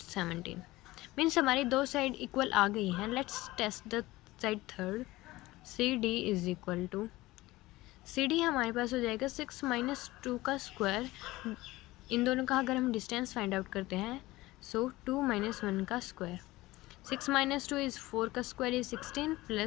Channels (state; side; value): quieter; right; 18.8 dB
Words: 17। Means हमारी दो side equal आ गई हैं। Let's test the side third. C D is equal to, C D हमारे पास हो जाएगा 6 माइनस 2 का स्क्वायर, इन दोनों का अगर हम डिस्टेंस फाइंड आउट करते हैं, सो 2 माइनस 1 का स्क्वायर, 6 माइनस 2 इज़ 4 का square is 16